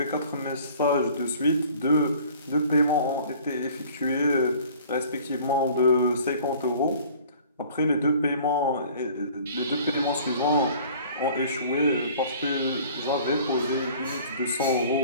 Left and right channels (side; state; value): both; inverted; correlation -0.49